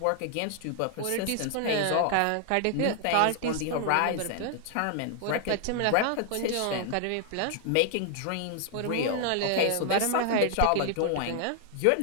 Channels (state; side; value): different; both; correlation 0.00